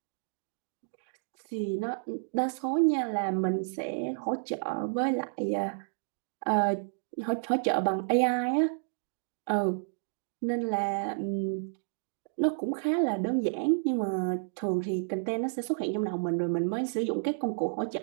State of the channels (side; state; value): left; silent; digital silence